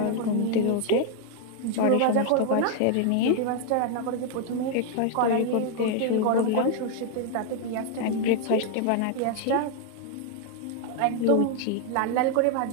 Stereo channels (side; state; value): both; different; correlation 0.00